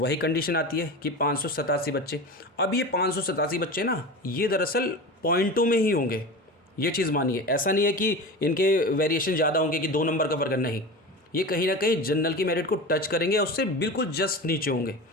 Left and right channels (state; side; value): normal; both; correlation 0.29